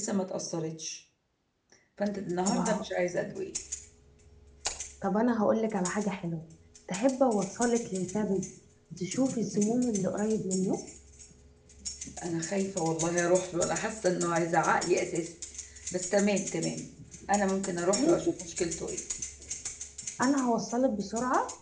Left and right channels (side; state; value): both; identical; correlation 1.00